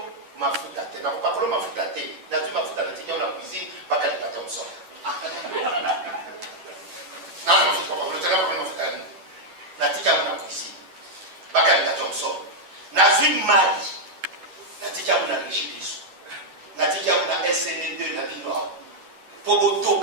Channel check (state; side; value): late; left; 11 ms